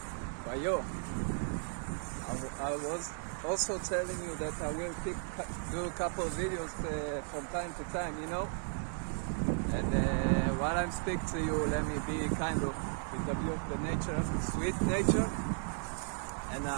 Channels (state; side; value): silent; left; 54 dB below the other